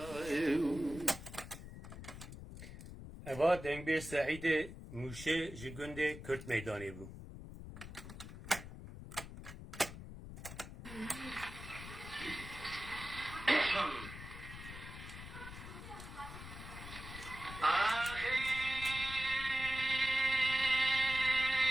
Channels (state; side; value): noise; left; rumble, 12 dB below the sound